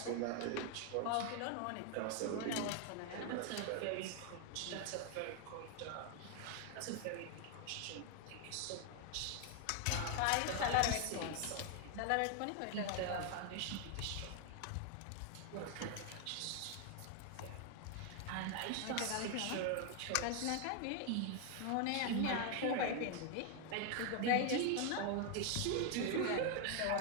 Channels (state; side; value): different; both; correlation 0.00